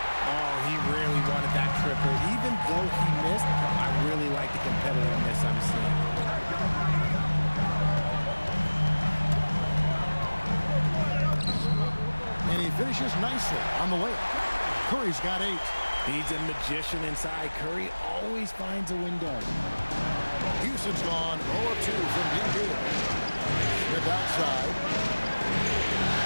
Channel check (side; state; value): both; inverted; correlation -1.00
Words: Oh, he really wanted that triple. Even though he missed, I really like the competitiveness I'm seeing. And he finishes nicely on the layup. Curry's got 8. He's a magician inside. Curry always finds a window. Houston's gone 0 of 2 from deep here. Smith outside.